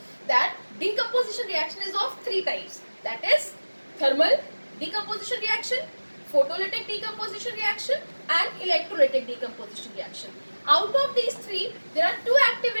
that decomposition reaction is of three types. That is thermal decomposition reaction, photolytic decomposition reaction, and electrolytic decomposition reaction. Out of these three, there are two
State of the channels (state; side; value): inverted; both; correlation -1.00